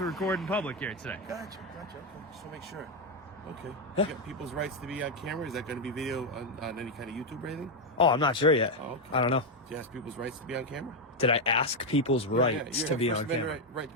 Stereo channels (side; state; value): both; normal; correlation 0.04